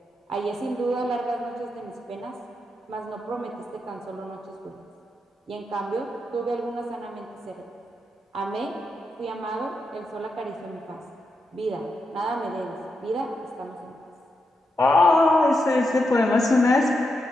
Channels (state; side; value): normal; both; correlation 0.84